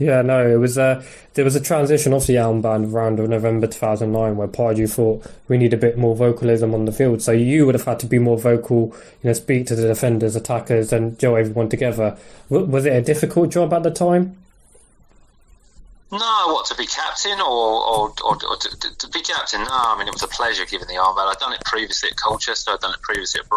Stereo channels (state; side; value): identical; both; correlation 1.00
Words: no, it was there was a transition off the armband around November 2009 where Pardew thought we need a bit more vocalism on the field. So you would have had to be more vocal, speak to the defenders, attackers, and gel everyone together. Was it a difficult job at the time? No, to be captain or to be captain? No, I mean, it was a pleasure giving the armband. I'd done it previously at Colchester, I'd done it previously at